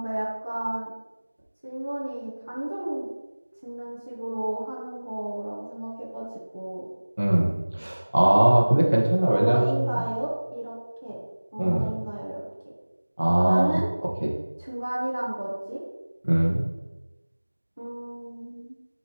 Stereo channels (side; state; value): both; inverted; correlation -1.00